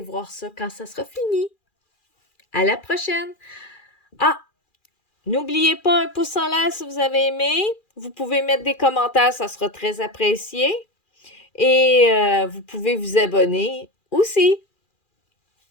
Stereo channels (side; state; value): right; late; 2.4 ms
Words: voir ça quand ça sera fini. À la prochaine! Ah! N'oubliez pas un pouce en l'air si vous avez aimé. Vous pouvez mettre des commentaires, ça sera très apprécié. Et vous pouvez vous abonner aussi